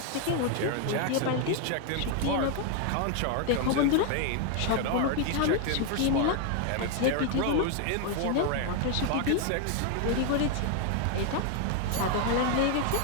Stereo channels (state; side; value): different; both; correlation 0.00